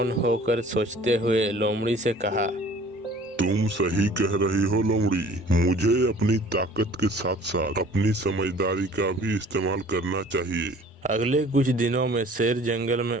होकर सोचते हुए लोमड़ी से कहा, तुम सही कह रही हो लोमड़ी, मुझे अपनी ताकत के साथ साथ अपनी समझदारी का भी इस्तेमाल करना चाहिए। अगले कुछ दिनों में शेर जंगल में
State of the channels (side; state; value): both; normal; correlation 0.50